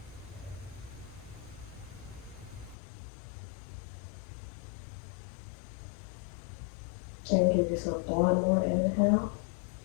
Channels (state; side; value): drops out; right; at 2.8 s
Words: And give yourself one more inhale.